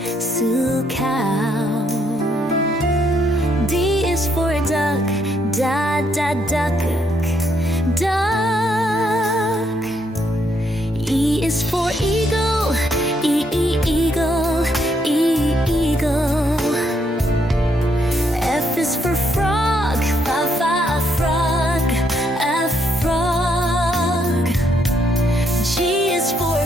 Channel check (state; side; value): normal; both; correlation 0.74